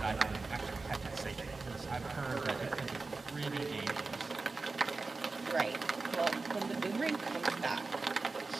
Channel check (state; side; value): quieter; left; 3.8 dB